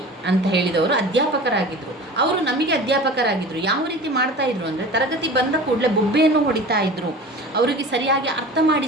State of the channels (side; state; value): both; normal; correlation 0.38